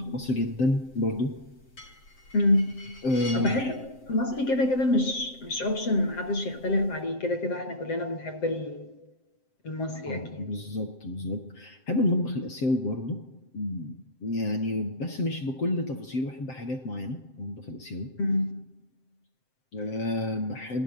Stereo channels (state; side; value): late; right; 7.7 ms